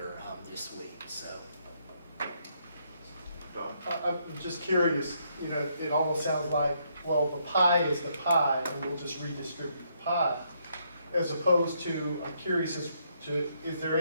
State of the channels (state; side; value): inverted; both; correlation -0.73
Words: this week. So. I'm just curious, you know, it almost sounds like, well, the pie is the pie, and we'll just redistribute the pie. As opposed to, I'm curious as to, is there